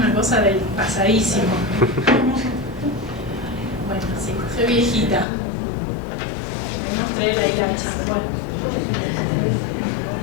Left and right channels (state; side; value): drops out; right; at 5.2 s